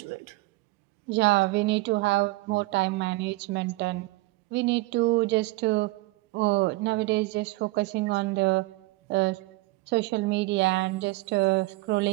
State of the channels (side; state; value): left; quieter; 21.1 dB